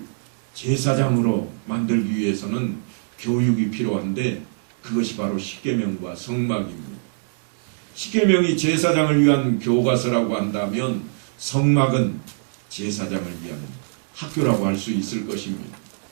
제사장으로 만들기 위해서는 교육이 필요한데 그것이 바로 십계명과 성막입니다. 십계명이 제사장을 위한 교과서라고 한다면 성막은 제사장을 위한 학교라고 할 수 있을 것입니다.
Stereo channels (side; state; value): left; silent; digital silence